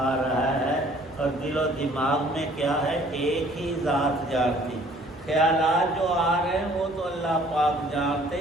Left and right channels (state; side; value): normal; both; correlation 0.56